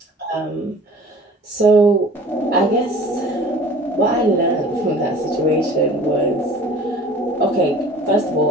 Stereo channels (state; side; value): normal; both; correlation 0.45